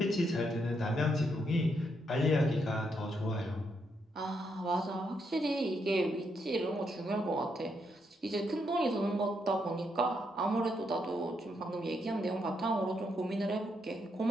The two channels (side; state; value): both; normal; correlation 0.78